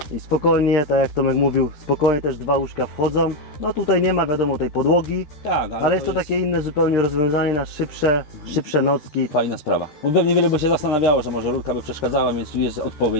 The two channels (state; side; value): late; right; 13 ms